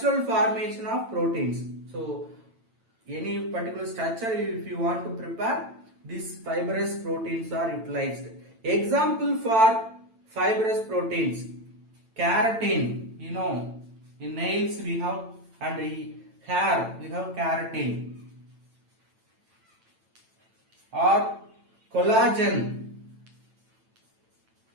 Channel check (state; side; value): late; left; 9.0 ms